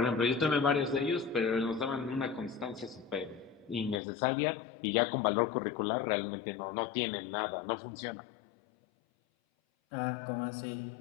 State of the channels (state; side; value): drops out; right; at 4.0 s